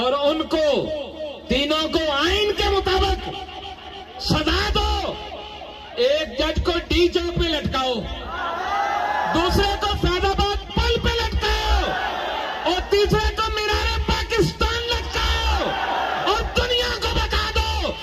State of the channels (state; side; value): identical; both; correlation 1.00